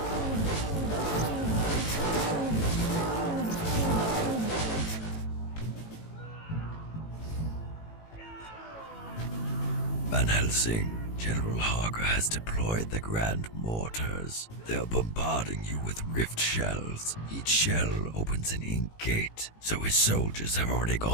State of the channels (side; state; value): right; late; 18 ms